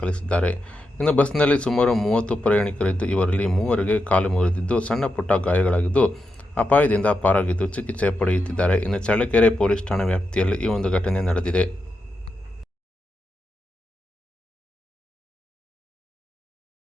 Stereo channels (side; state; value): both; normal; correlation 0.86